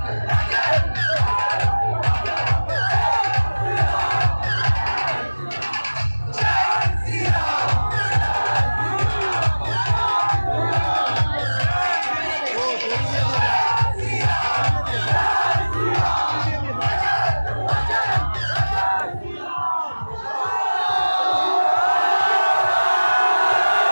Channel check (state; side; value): inverted; both; correlation -1.00